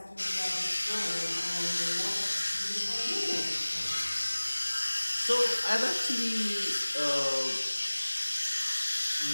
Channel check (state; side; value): inverted; both; correlation -1.00